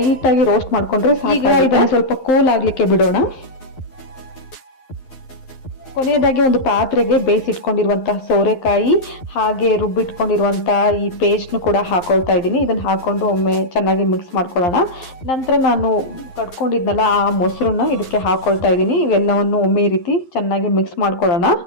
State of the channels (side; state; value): right; late; 11 ms